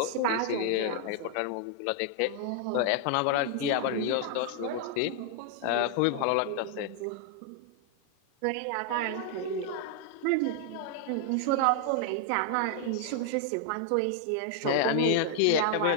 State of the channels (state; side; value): different; both; correlation 0.00